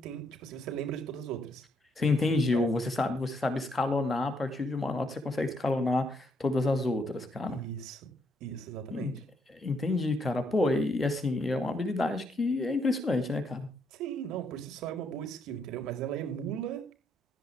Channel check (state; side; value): normal; both; correlation 0.74